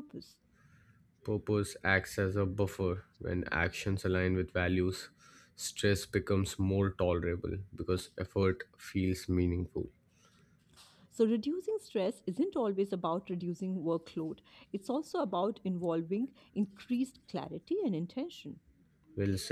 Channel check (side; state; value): both; identical; correlation 1.00